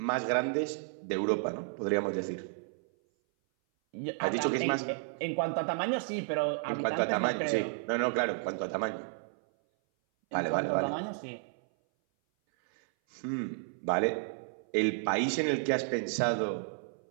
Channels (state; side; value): silent; left; 56 dB below the other